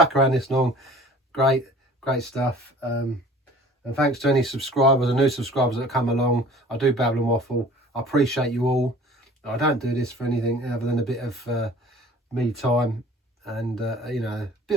around this long, great stuff. And thanks to any subscribers and new subscribers that come along. I do babble and waffle. I appreciate you all. I don't do this for anything other than a bit of me time, and you know, a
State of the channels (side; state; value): both; normal; correlation 0.48